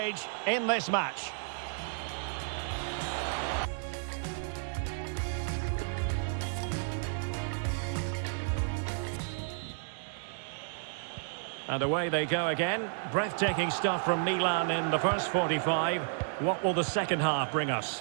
in this match. And away they go again. Breathtaking stuff from Milan in the first 45. What will the second half bring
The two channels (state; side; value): silent; left; digital silence